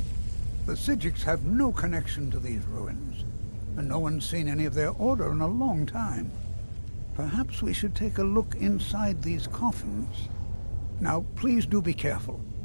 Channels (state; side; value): inverted; both; correlation -1.00